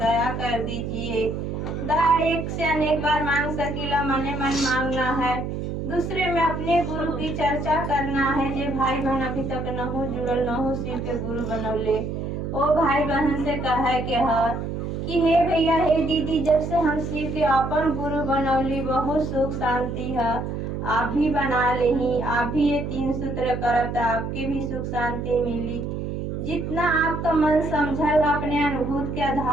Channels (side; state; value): right; noise; hum, 4 dB below the sound